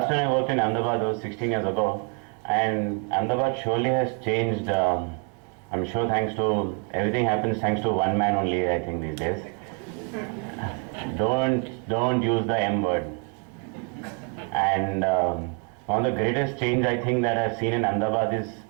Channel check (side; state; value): left; quieter; 38.2 dB